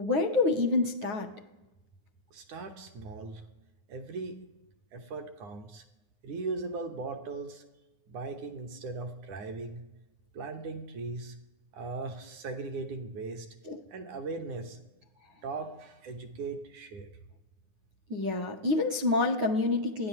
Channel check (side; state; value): left; late; 9.4 ms